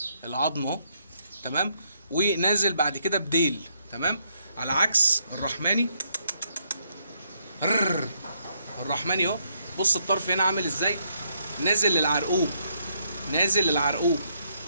العظم اهو. تمام. ونازل بعد كده بديل. تمام. على عكس الرحماني. الرحماني اهو. بص الطرف هنا عامل ازاي، نازل للعرقوب، نازل للعرقوب.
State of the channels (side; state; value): both; inverted; correlation -0.74